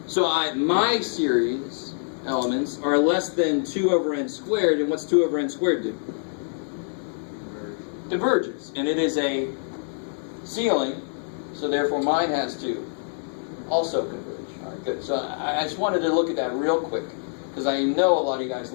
So my series elements are less than 2 over n squared, and what's 2 over n squared do? Diverges. And it is a ceiling, so therefore mine has to also converge. All right, good. So I just wanted to look at that real quick, because I know a lot of you guys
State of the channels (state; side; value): silent; right; 61 dB below the other